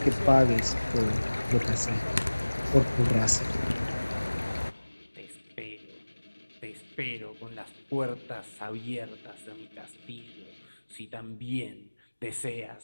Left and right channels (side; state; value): both; inverted; correlation -1.00